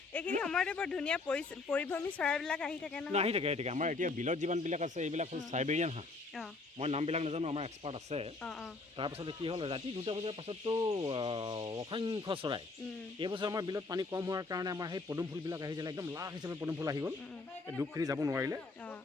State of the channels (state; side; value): quieter; right; 3.7 dB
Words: এইখিনি সময়তে বৰ ধুনীয়া পৰিভ্ৰমী চৰাইবিলাক আহি থাকে নহয়। আহি থাকে আমাৰ এতিয়া বিলত যিমানবিলাক আছে এইবিলাক হ'ল চাইবেৰিয়ান হাঁহ। মই নামবিলাক নাজানো, আমাৰ এক্সপাৰ্ট আছে। তাৰপাছতে কি হ'ল ৰাতি 2টা বজাৰ পাছততো অসংখ্য চৰাই। এইবছৰ আমাৰ বিলত পানী কম হোৱাৰ কাৰণে আমাৰ সেই পদুম ফুলবিলাক আহিছিলে, একদম লাখ হিচাপে পদুম ফুল আহি গ'ল। দুখখিনি যাব নোৱাৰিলে,